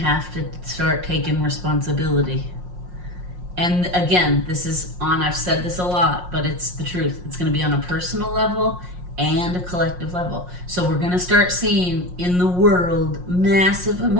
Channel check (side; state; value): left; late; 5.6 ms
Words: to start taking responsibility. And again, I've said this a lot, but it's the truth. It's going to be on a personal level and a collective level. So we're going to start seeing in the world massive